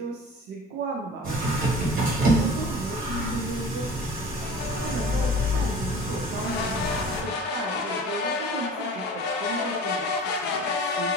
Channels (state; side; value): normal; both; correlation 0.41